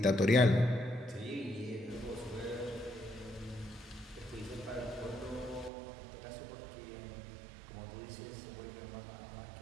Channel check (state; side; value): drops out; left; at 5.7 s